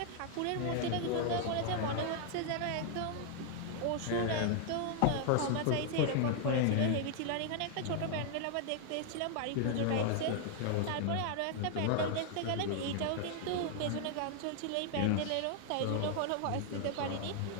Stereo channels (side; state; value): both; different; correlation 0.00